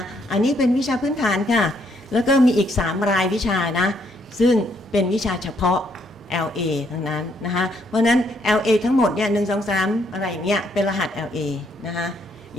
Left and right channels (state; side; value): normal; both; correlation 0.71